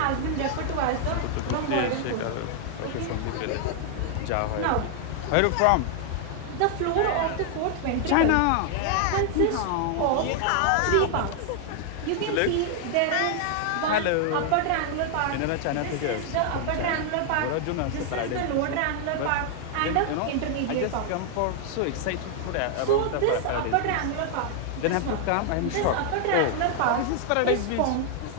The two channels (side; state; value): both; different; correlation 0.00